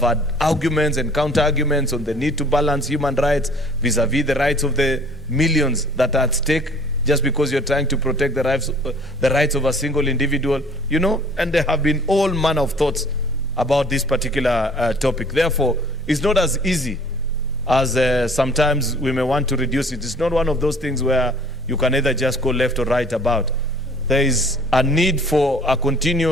arguments and counter-arguments on the need to balance human rights vis-a-vis the rights of the millions that are at stake, just because you're trying to protect the rights of a single individual, you know, and there have been all manner of thoughts about this particular topic. Therefore, it's not as easy as sometimes we may want to reduce it. It's not one of those things where you can either just go left or right about. There is a need for a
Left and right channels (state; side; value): normal; both; correlation 0.53